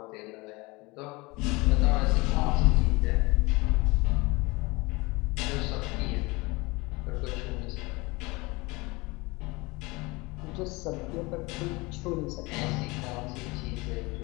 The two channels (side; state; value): right; quieter; 24.1 dB